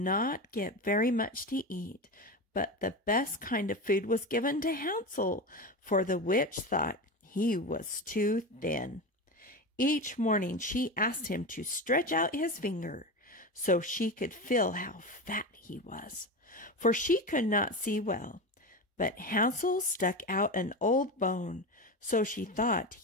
get very much to eat, but the best kind of food was given to Hansel, for the witch thought he was too thin. Each morning she asked him to stretch out his finger so she could feel how fat he was, for she could not see well. But Hansel stuck out an old bone, so she thought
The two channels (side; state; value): both; normal; correlation 0.22